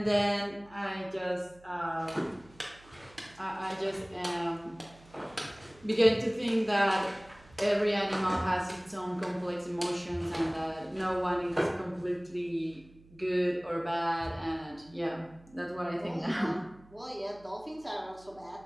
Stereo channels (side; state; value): right; noise; hum, 25 dB below the sound